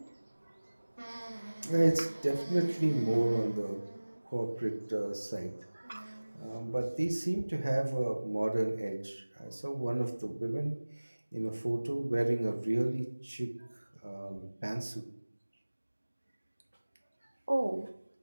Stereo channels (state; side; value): inverted; both; correlation -1.00